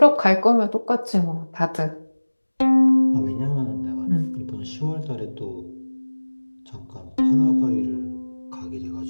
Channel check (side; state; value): both; inverted; correlation -1.00